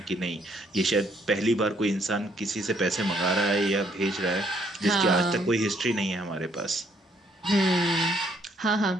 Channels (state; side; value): normal; both; correlation 0.68